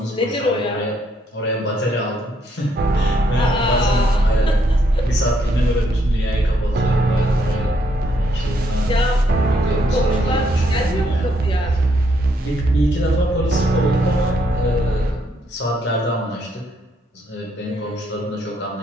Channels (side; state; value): both; normal; correlation 0.73